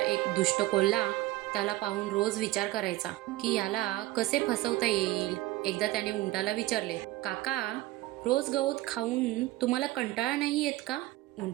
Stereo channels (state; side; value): quieter; left; 17.6 dB